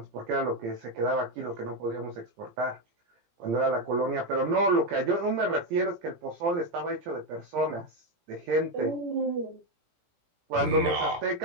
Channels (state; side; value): late; left; 17 ms